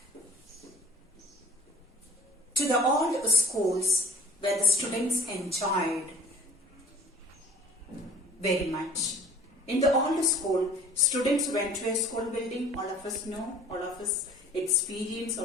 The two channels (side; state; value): both; normal; correlation 0.49